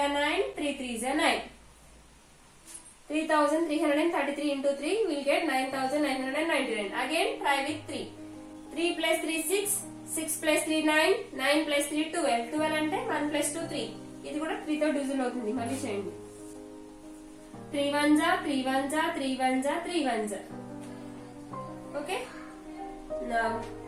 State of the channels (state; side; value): identical; both; correlation 1.00